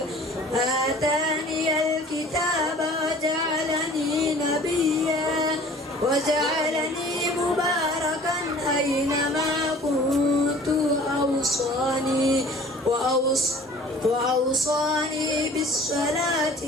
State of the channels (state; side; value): normal; both; correlation 0.48